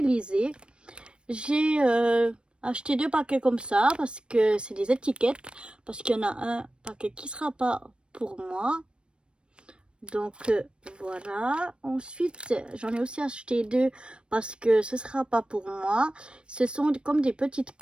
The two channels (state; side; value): late; left; 0.056 ms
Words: J'ai acheté 2 paquets comme ça parce que c'est des étiquettes. Parce qu'il y en a un paquet qui sera pas pour moi. Donc voilà. Ensuite, j'en ai aussi acheté 2 parce que ce sera pas pour moi. Ce sont comme des petites